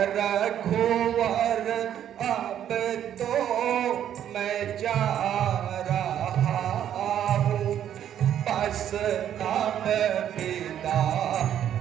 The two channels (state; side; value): quieter; left; 10.3 dB